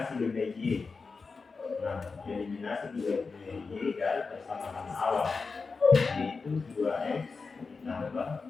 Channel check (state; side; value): quieter; right; 4.5 dB